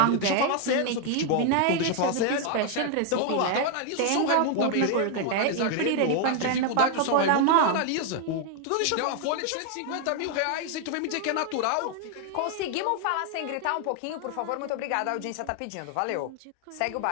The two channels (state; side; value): different; both; correlation 0.01